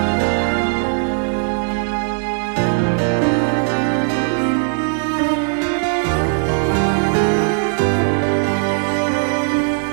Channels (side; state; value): left; silent; 62 dB below the other